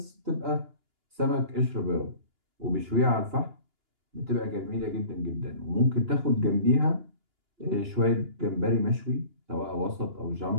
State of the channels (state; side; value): late; left; 2.9 ms